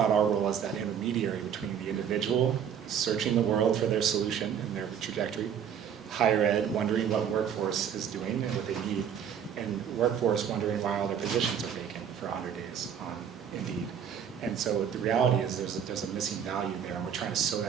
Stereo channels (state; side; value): quieter; left; 8.3 dB